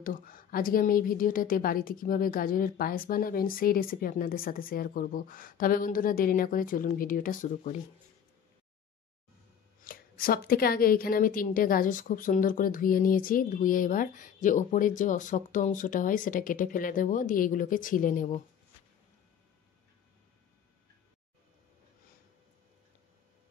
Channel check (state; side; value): quieter; right; 8.3 dB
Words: আজকে আমি এই ভিডিওটাতে বাড়িতে কিভাবে গাজরের পায়েস বানাবেন সেই রেসিপি আপনাদের সাথে শেয়ার করব। তবে বন্ধুরা, দেরি না করে চলুন ভিডিওটা শুরু করি। সব থেকে আগে এখানে আমি 3টে গাজর খুব সুন্দর করে ধুয়ে নিয়েছি। ধুয়ে এবার যে ওপরের যে শক্ত অংশটা হয় সেটা কেটে ফেলে দেবো, দিয়ে এগুলোকে ছিলে নেব।